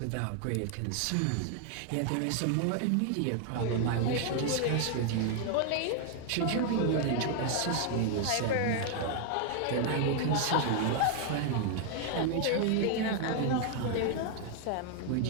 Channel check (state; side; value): different; both; correlation 0.00